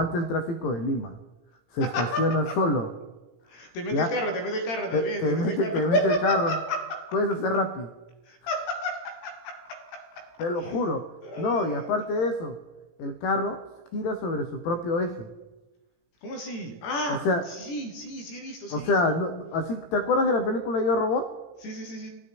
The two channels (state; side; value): late; right; 17 ms